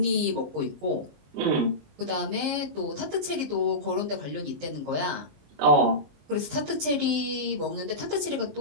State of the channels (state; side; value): late; left; 19 ms